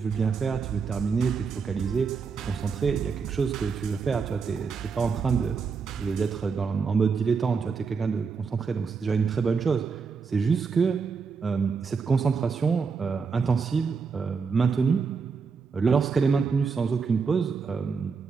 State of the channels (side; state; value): left; quieter; 5.4 dB